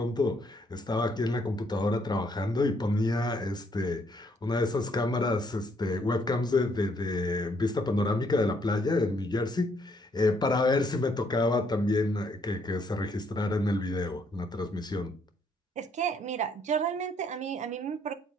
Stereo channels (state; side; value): normal; both; correlation 0.69